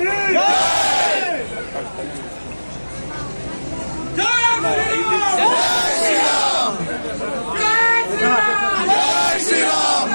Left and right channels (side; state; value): both; inverted; correlation -1.00